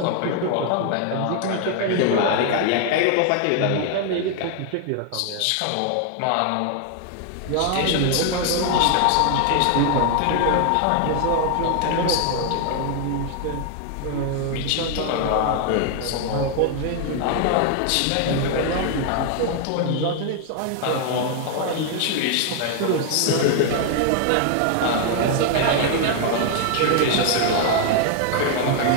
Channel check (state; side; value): different; both; correlation 0.00